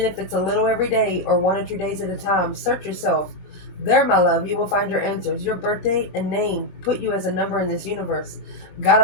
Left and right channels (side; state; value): right; late; 22 ms